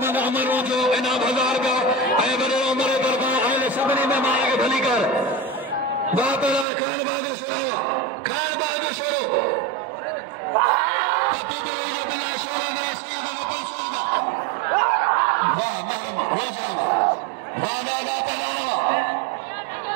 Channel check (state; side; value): drops out; left; at 6.7 s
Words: अमर रोजो इनाम 1000 का ऐ वडो उमर दरबार आले सबनी में माया के भली कर वाह खान बहादुर शुरू पति दिले बिला शोरे ने सैयद अब्बास शर्मा वाह मैं रोजो वाह